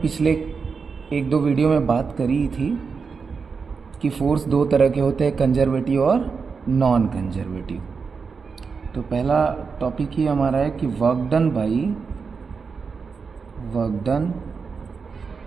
एक दो वीडियो में बात करी थी कि फोर्स दो तरह के होते हैं, कंजर्वेटिव और नॉन कंजर्वेटिव। तो पहला टॉपिक ही हमारा है कि work done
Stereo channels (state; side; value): quieter; left; 5.3 dB